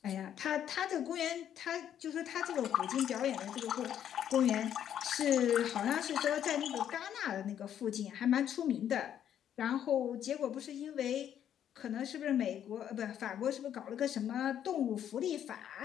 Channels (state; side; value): quieter; right; 9.9 dB